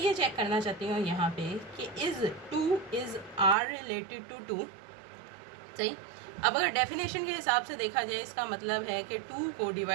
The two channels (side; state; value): left; drops out; at 3.6 s